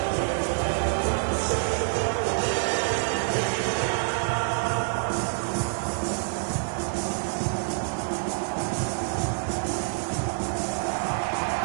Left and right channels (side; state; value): left; silent; 55 dB below the other